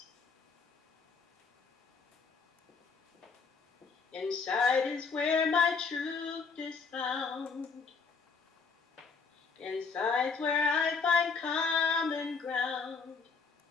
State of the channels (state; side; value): quieter; right; 5.1 dB